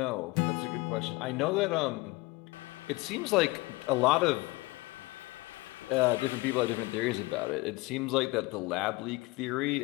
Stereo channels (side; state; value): right; quieter; 22.7 dB